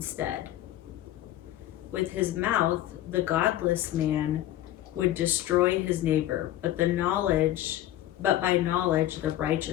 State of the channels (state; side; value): quieter; right; 13.6 dB